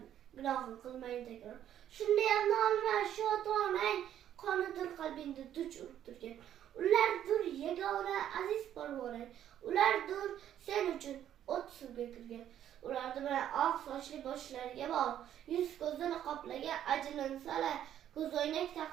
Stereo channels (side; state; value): left; quieter; 10.8 dB